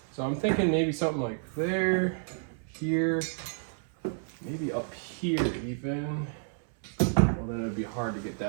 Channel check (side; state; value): left; silent; 58 dB below the other